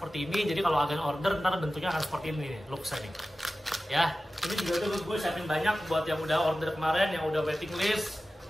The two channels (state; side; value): normal; both; correlation 0.95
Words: ini. Jadi kalau agan order ntar bentuknya akan seperti ini nih, looks-nya nih. Ya, ini juga tuh gue siapin banyak buat yang udah order kemarin, yang udah waiting list.